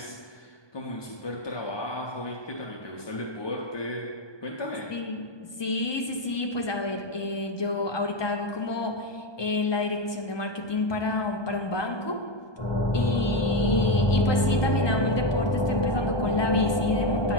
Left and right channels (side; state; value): right; late; 1.2 ms